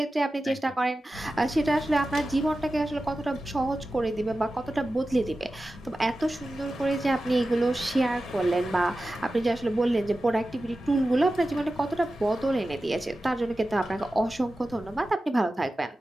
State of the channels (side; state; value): both; normal; correlation 0.94